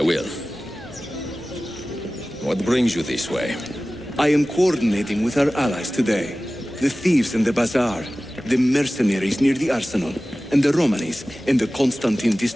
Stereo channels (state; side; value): normal; both; correlation 0.97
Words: will. What brings you this way? I am coordinating with our allies today. The thieves in the bazaar, the mercenaries near the arsenal, and the Romanis in the Constantine